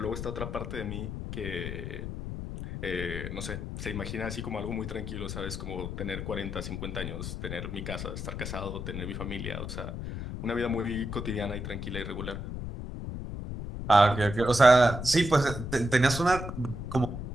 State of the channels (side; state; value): left; noise; rumble, 6 dB below the sound